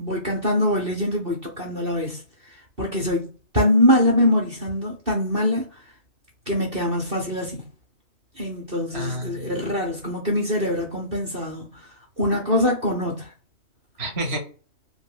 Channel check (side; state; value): left; late; 2.6 ms